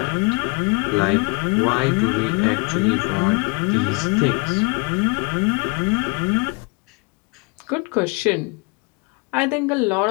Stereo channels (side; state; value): right; quieter; 29.1 dB